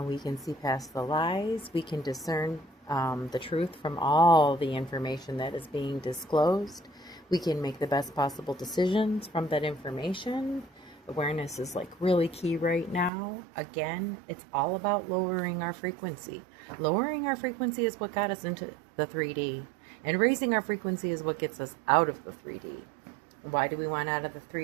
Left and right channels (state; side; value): drops out; left; at 13.1 s